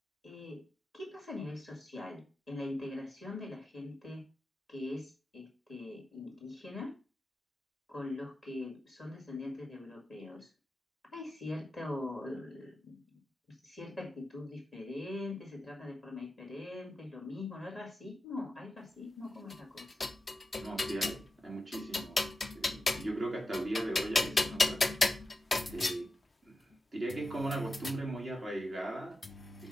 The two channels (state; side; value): normal; both; correlation 0.91